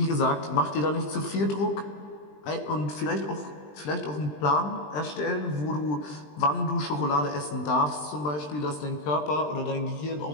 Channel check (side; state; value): right; late; 20 ms